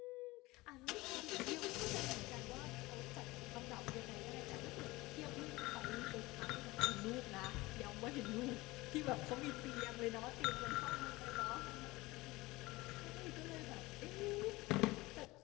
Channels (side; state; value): right; quieter; 20.8 dB